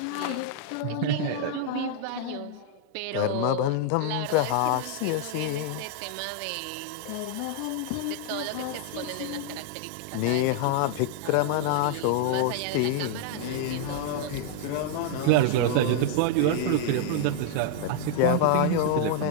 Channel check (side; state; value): both; different; correlation 0.00